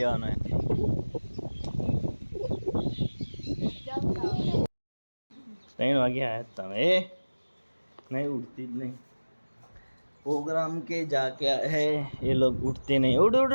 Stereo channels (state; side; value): inverted; both; correlation -1.00